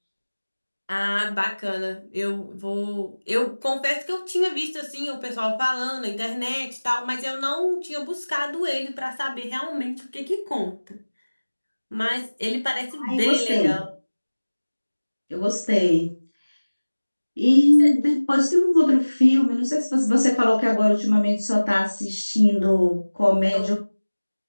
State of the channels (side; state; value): both; inverted; correlation -1.00